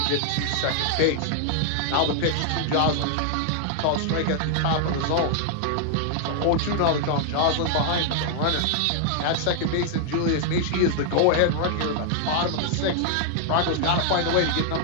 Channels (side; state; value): both; different; correlation 0.00